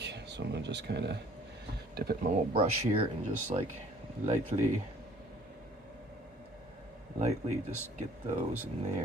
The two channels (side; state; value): both; normal; correlation 0.55